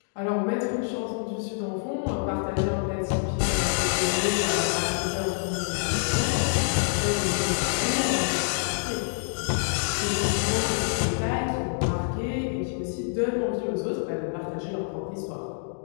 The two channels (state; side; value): silent; right; digital silence